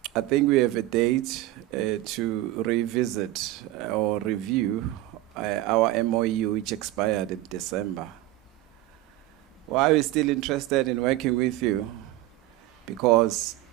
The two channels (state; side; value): quieter; left; 16.1 dB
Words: I think we have a date to revisit or review our MOU, which expired in December. Why are we still interested in working with you? Because